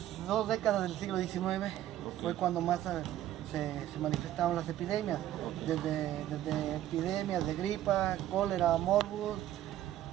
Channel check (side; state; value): left; quieter; 12.9 dB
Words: 2 décadas del siglo XIX fue cuando más se manifestaron las epidemias. Desde epidemias de gripa, cólera, morbus,